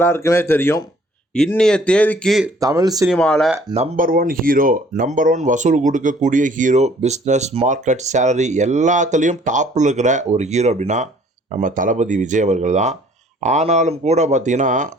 தெரியும். இன்னைய தேதிக்கு தமிழ் சினிமாவில் number one hero, number one வசூல் கொடுக்கக்கூடிய ஹீரோ, பிஸ்னஸ், மார்க்கெட், சேலரி எல்லாத்துலேயும் டாப்பில் இருக்கிற ஒரு ஹீரோ அப்படின்னா நம்ம தளபதி விஜய் அவர்கள் தான். ஆனாலும் கூட பார்த்திங்கன்னா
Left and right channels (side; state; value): both; normal; correlation 0.57